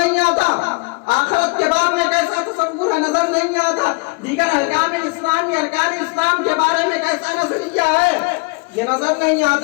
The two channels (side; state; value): right; quieter; 30.2 dB